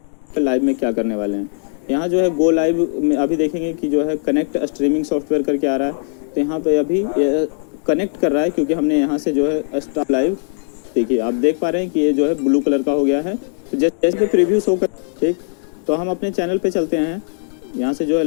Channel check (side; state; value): right; silent; digital silence